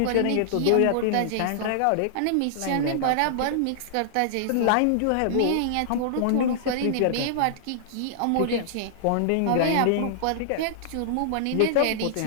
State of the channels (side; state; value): both; different; correlation -0.01